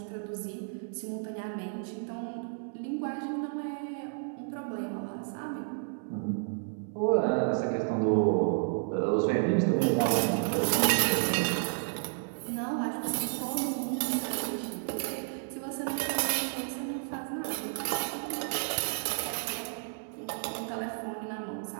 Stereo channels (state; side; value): silent; left; 57 dB below the other